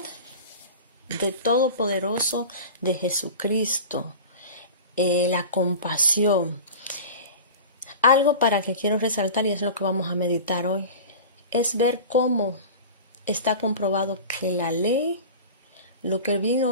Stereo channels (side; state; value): both; inverted; correlation -0.34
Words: de Todopoderoso, de Jesucristo, la compasión. Algo para que quiero resaltar, y es lo que vamos a meditar hoy, es ver cómo está comprobado que la ley lo que